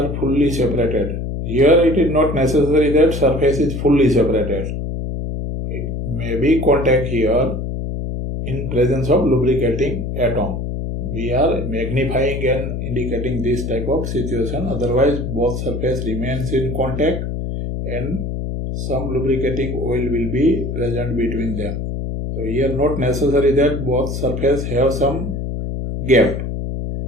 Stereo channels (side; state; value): left; noise; hum, 4 dB below the sound